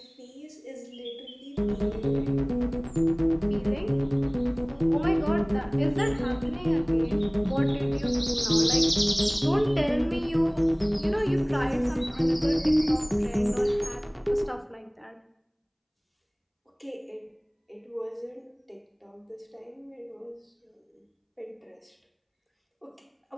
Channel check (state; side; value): identical; both; correlation 1.00